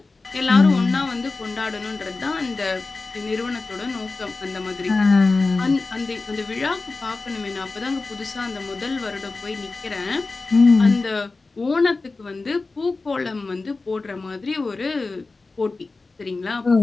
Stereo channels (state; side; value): quieter; right; 3.7 dB